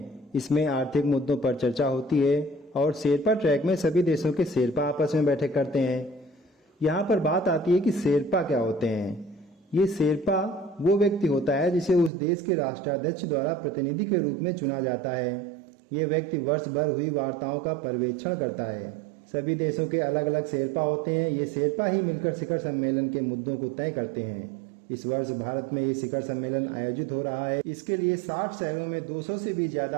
इसमें आर्थिक मुद्दों पर चर्चा होती है। और शेरपा ट्रैक में सभी देशों के शेरपा आपस में बैठक करते हैं। यहाँ पर बात आती है कि शेरपा क्या होते हैं। ये शेरपा वो व्यक्ति होता है जिसे उस देश के राष्ट्राध्यक्ष द्वारा प्रतिनिधि के रूप में चुना जाता है। ये व्यक्ति वर्ष भर हुई वार्ताओं का पर्यवेक्षण करता है। सभी देशों के अलग अलग शेरपा होते हैं। ये शेरपा ही मिलकर शिखर सम्मेलन के मुद्दों को तय करते हैं। इस वर्ष भारत में ये शिखर सम्मेलन आयोजित हो रहा है। इसके लिए 60 शहरों में 200 से भी ज्यादा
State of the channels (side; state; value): left; drops out; at 12.1 s